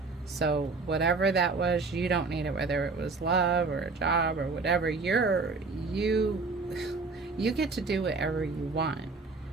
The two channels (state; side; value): quieter; left; 4.0 dB